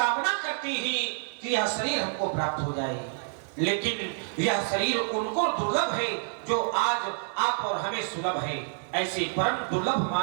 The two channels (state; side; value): silent; left; digital silence